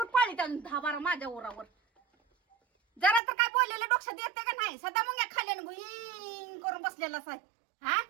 पाळीत अजून 10-12 माझ्या ओरावर जरा तर काय बोललेलं डोक्यात येते का नाही सदा मग या खाल्यानं गुईंग करून बसलेलाच आहे हा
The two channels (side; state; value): left; drops out; at 3.2 s